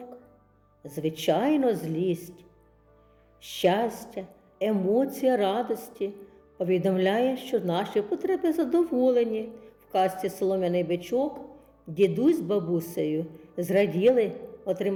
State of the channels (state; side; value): identical; both; correlation 1.00